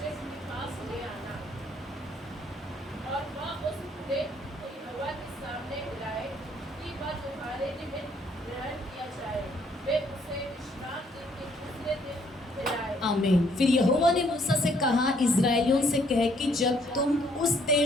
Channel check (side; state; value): both; normal; correlation 0.66